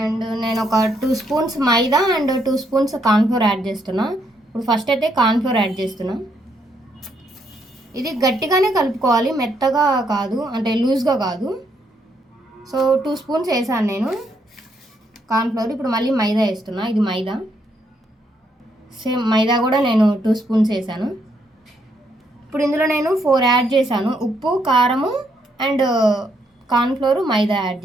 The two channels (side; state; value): both; normal; correlation 0.75